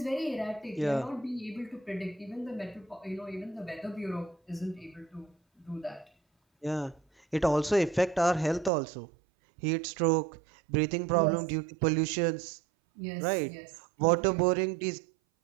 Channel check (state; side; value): drops out; left; at 8.7 s